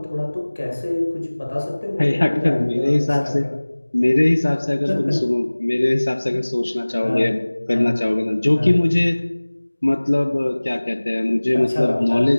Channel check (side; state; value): both; inverted; correlation -1.00